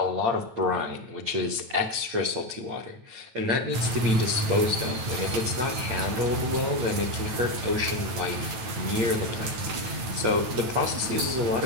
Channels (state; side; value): late; left; 9.0 ms